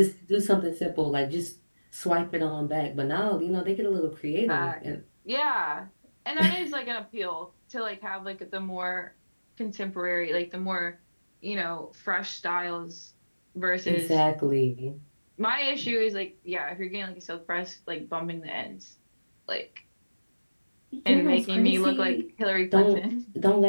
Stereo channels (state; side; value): inverted; both; correlation -1.00